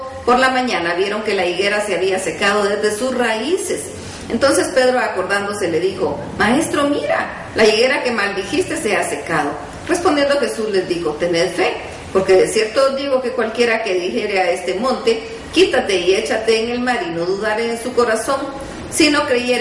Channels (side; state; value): both; identical; correlation 1.00